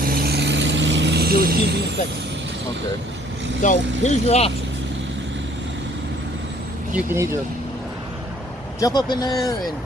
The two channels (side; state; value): both; normal; correlation 0.59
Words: you're refusing inspection. Okay. So here's your options. You can either jump up in there and